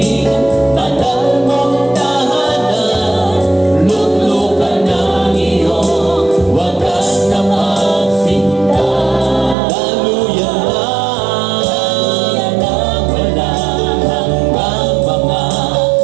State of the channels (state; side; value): drops out; left; at 9.6 s